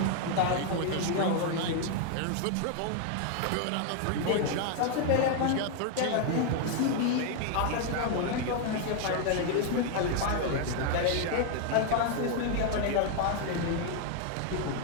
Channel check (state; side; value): different; both; correlation 0.00